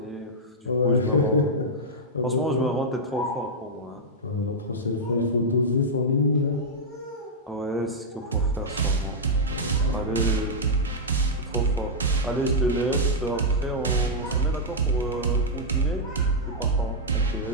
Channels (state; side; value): normal; both; correlation -0.05